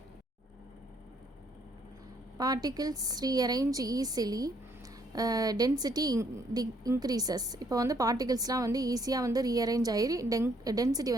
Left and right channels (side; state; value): both; normal; correlation 0.68